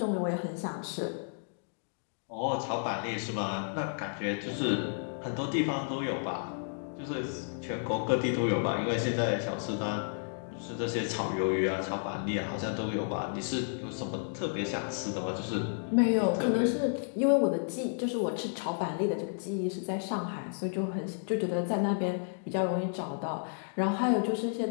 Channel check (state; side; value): silent; right; digital silence